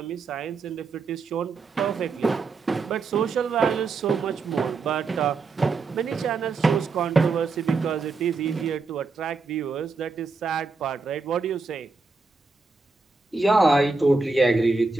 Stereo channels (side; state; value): left; quieter; 4.1 dB